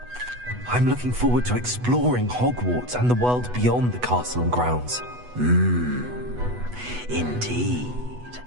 I'm looking forward to exploring Hogwarts and the world beyond the castle and grounds. Indeed.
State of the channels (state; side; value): late; left; 8.1 ms